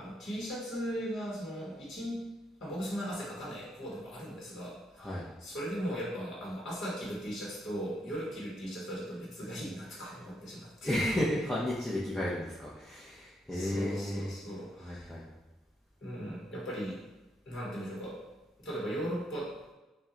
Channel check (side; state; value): both; normal; correlation 0.77